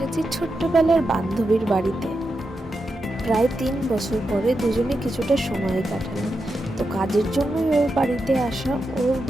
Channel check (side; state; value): both; normal; correlation 0.87